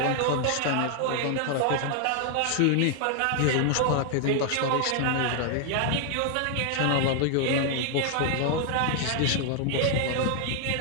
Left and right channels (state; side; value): different; both; correlation 0.00